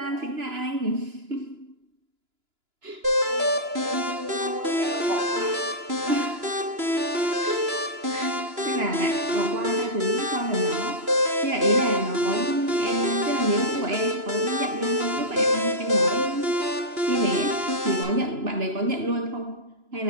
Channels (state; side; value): late; left; 2.9 ms